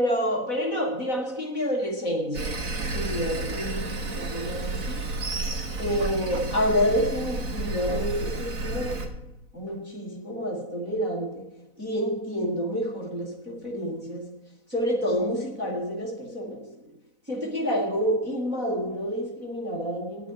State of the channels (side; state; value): left; late; 4.0 ms